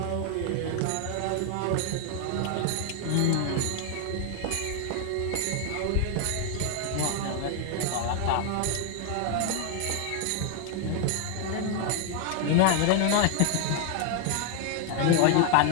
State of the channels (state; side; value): different; both; correlation 0.00